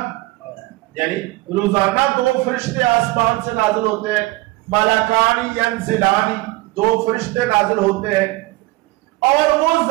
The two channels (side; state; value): left; quieter; 20.2 dB